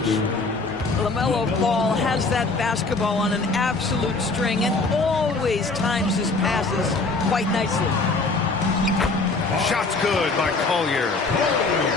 LaMelo Ball has that basketball on an absolute string and always times his passes quite nicely. Shots good by Collier.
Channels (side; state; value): right; quieter; 3.6 dB